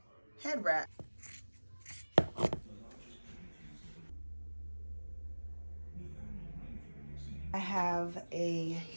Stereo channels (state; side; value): inverted; both; correlation -1.00